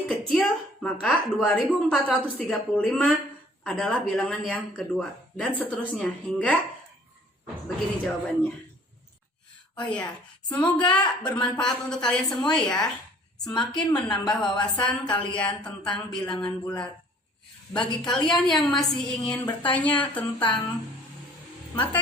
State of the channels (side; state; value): both; normal; correlation 0.54